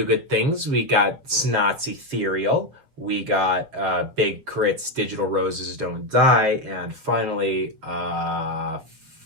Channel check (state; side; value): late; left; 7.4 ms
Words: Good Things. We got Snot's Ethereal. We got Big K.R.I.T's Digital Roses Don't Die. And finally,